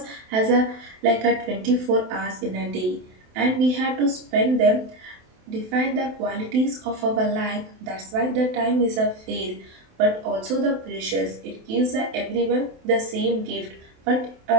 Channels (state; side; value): late; left; 27 ms